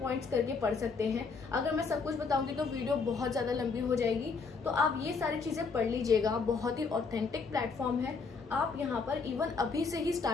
करके पढ़ सकते हैं। अगर मैं सब कुछ बताऊंगी तो वीडियो बहुत ज्यादा लंबी हो जाएगी, तो आप ये सारी चीजें पढ़ लीजिएगा। बहुत ही ऑथेंटिक प्लेटफॉर्म है, आप यहाँ पर इवन अभी से ही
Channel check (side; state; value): right; quieter; 4.8 dB